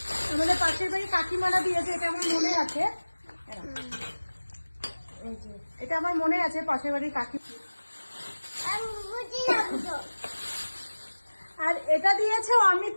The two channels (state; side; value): inverted; both; correlation -1.00